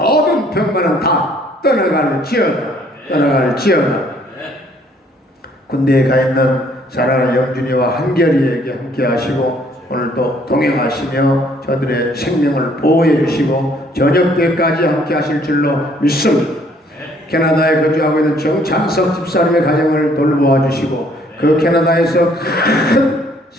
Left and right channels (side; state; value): both; normal; correlation 0.63